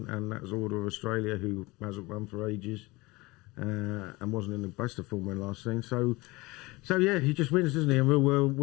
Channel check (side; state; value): right; quieter; 22.6 dB